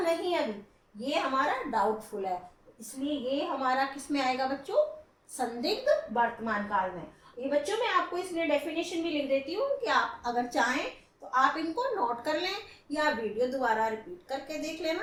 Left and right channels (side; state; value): both; identical; correlation 1.00